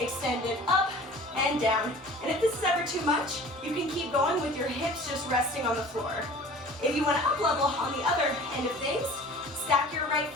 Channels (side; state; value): both; normal; correlation 0.44